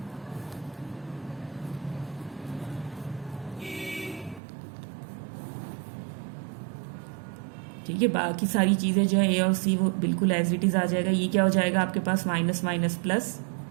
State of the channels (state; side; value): drops out; left; at 4.4 s